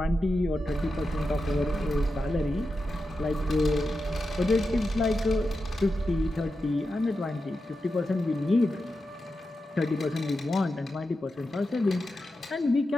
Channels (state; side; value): normal; both; correlation 0.90